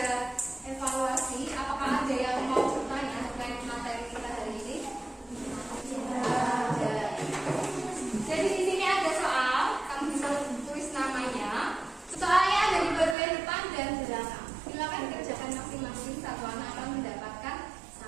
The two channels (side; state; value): left; drops out; at 13.2 s